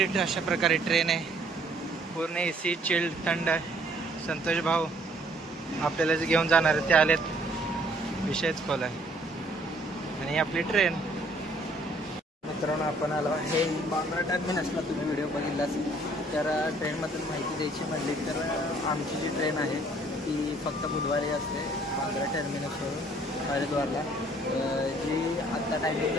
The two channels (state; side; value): normal; both; correlation 0.61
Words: अशा प्रकारे ट्रेन आहे, पूर्ण एसी चिल्ड थंड. संतोष भाऊ आपल्याला जे घेऊन जाणार ते आलेत, विषयच खोल आहे. आणि आपली ट्रेन. मित्रांनो आपण आलो आहे बांद्रा टर्मिनसला. तुम्ही व्हिडिओ बघितलाच. तर ट्रेनमधून माहिती द्यायची म्हणली तर आमची जी ट्रेन आहे ती फक्त बुधवारी असते बांद्रा टर्मिनसवरून हरिद्वारला. जी आत्ता टायमिंग